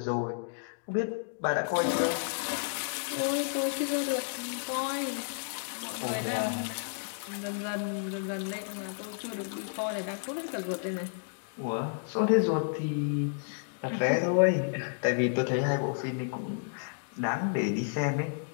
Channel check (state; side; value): silent; right; digital silence